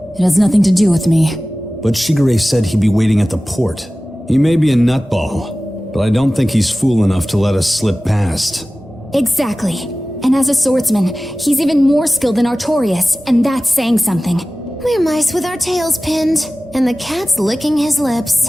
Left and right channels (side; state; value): both; normal; correlation 0.96